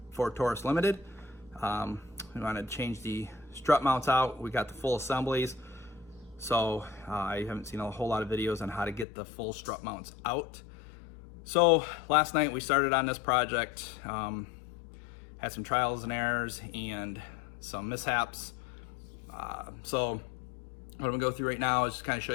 Ford Taurus Limited. We wanted to change the strut mounts out. We got the full assemblies. So I haven't seen a whole lot of videos on how to get the full strut mounts out. So last night we started on this project, had some trials and errors and some mishaps. So what I'm gonna go through right now is just kind of show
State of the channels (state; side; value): drops out; right; at 9.1 s